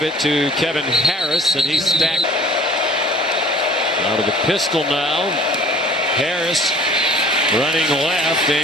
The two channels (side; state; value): both; normal; correlation 0.49